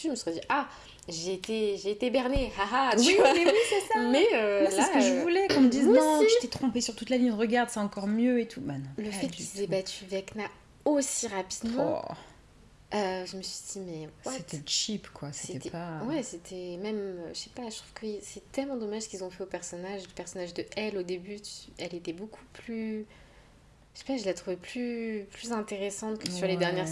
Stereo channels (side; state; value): both; identical; correlation 1.00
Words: je me serais dit j'ai été bernée, haha, tu vois. Mais oui, c'est ça. Mais moi, c'est ce que je voulais, qu'on me dise non, je t'ai trompée sur toute la ligne, regarde, c'est encore mieux et tout. Non, le fait qu'ils aient battu Vecna aussi rapidement, je me suis dit mais c'était cheap quoi, c'était pas... Ouais, c'était même, je sais pas, je trouve que c'est tellement dommage ce qu'ils ont fait le personnage de Elle au début, elle était beaucoup plus... Je sais pas, je la trouvais plus intéressante que sur les dernières